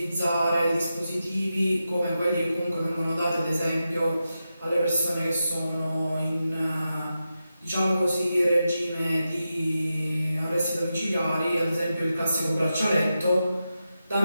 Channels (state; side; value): inverted; both; correlation -0.89